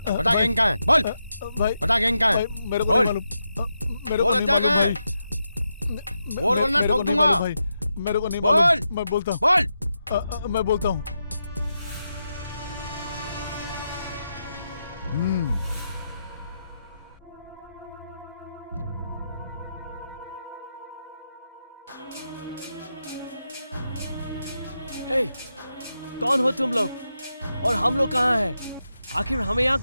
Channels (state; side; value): inverted; both; correlation -0.86